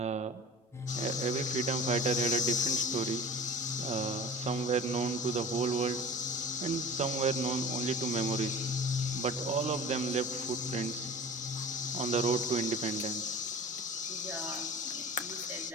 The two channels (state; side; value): normal; both; correlation 0.38